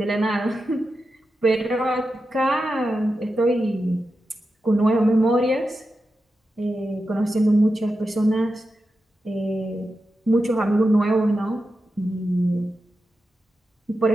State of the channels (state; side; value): normal; both; correlation 0.90